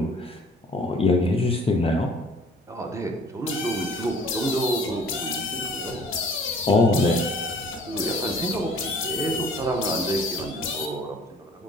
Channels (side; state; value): both; normal; correlation 0.52